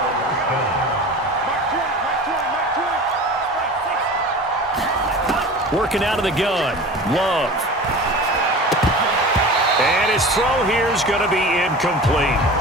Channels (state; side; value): normal; both; correlation 0.36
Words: Working out of the gun. Love. And his throw here is going to be incomplete.